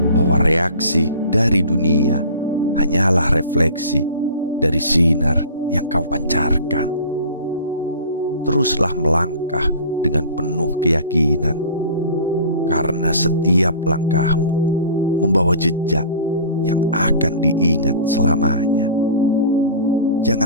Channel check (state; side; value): inverted; both; correlation -0.42